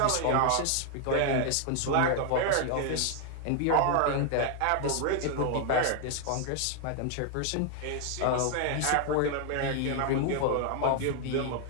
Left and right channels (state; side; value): different; both; correlation 0.00